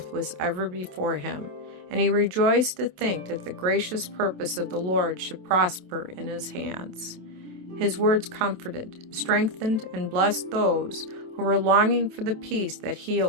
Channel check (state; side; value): late; left; 27 ms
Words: was ever before him, and he rejoiced to think that the gracious purpose of the Lord should prosper in his hands. His words comforted, strengthened, and blessed those who were longing for the peace that he